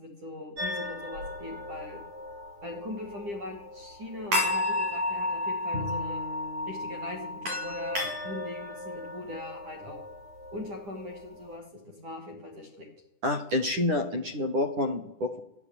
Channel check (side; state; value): left; late; 10 ms